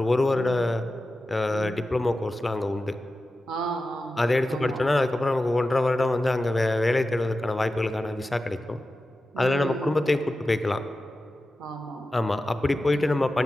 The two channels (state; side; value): normal; both; correlation 0.93